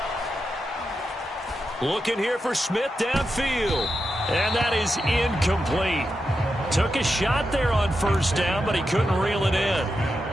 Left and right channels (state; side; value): normal; both; correlation 0.88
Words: Looking here for Smith downfield. And that is incomplete. Took a shot there on first down, but he couldn't reel it in.